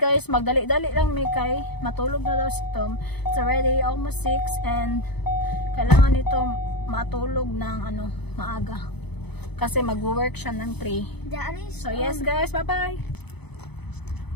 Magdali-dali lang may kay. Matulog na daw si Tom. It's already almost 6 and kailangan nito matulog ng maaga. Kasi mag-work siya ng 3. Daddy. So, yes guys. Bye-bye.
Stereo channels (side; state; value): right; late; 0.98 ms